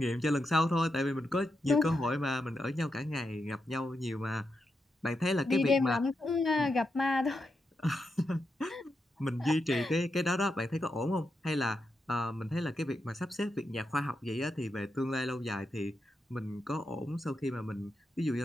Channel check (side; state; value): both; normal; correlation 0.86